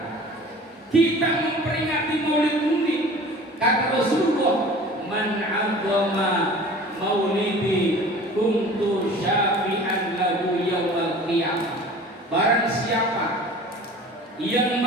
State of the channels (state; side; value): normal; both; correlation 0.43